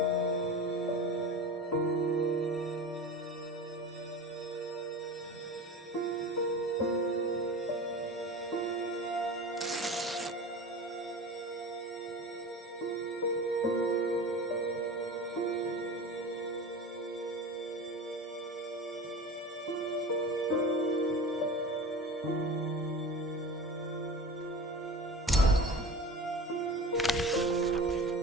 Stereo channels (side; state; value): both; normal; correlation 0.33